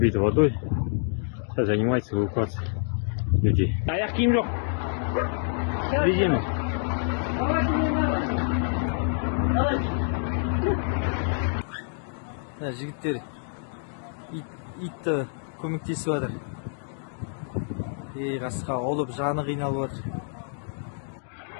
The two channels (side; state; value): right; silent; digital silence